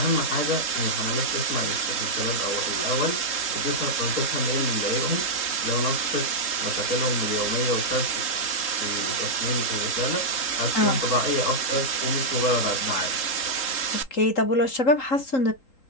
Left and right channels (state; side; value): late; right; 3.8 ms